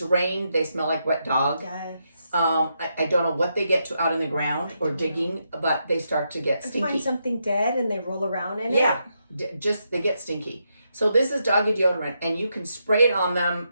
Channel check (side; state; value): both; inverted; correlation -0.82